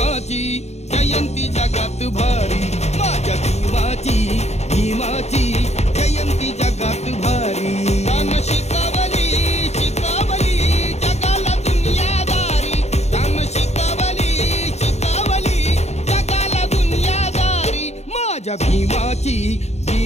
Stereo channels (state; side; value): late; right; 0.32 ms